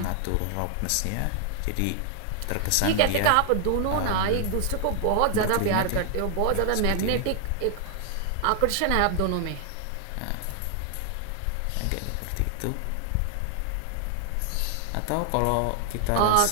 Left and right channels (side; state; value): both; different; correlation 0.00